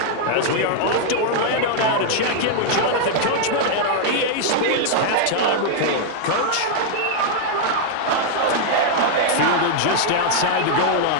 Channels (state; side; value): different; both; correlation -0.01